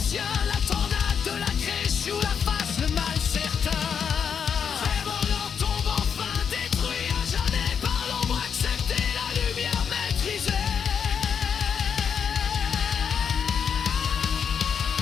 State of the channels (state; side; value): quieter; right; 7.1 dB